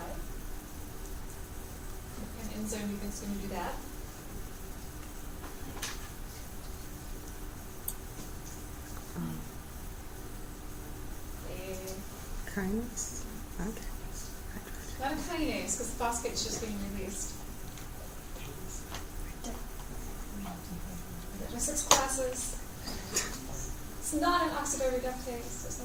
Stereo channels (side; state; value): both; identical; correlation 1.00